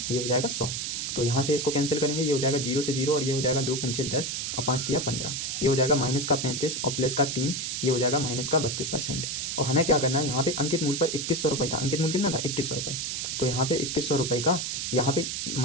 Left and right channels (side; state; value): right; noise; hiss, 3 dB below the sound